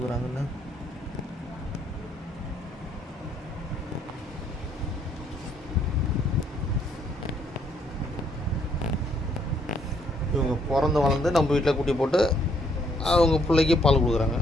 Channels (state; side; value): normal; both; correlation 0.68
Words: இவங்க பிறந்து வளர்ந்து நம்ம வீட்டில் குட்டி போட்டு அவங்க பிள்ளைக்கு பால் கொடுக்குறாங்க.